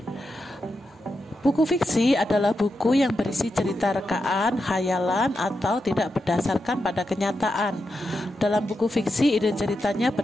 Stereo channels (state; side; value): normal; both; correlation 0.87